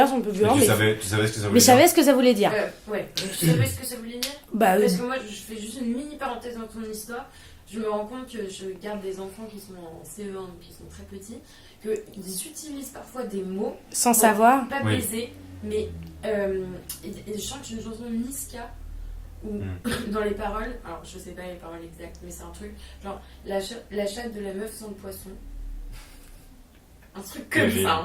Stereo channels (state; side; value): identical; both; correlation 1.00